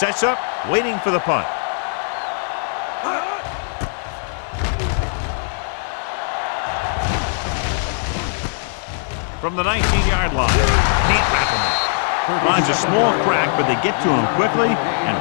up, waiting for the punt. From the 19-yard line, can't wrap him up. Finds a small crack, but they get to him quickly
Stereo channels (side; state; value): right; silent; 66 dB below the other